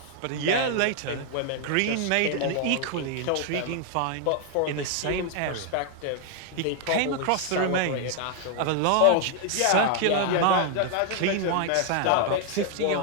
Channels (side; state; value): both; different; correlation 0.00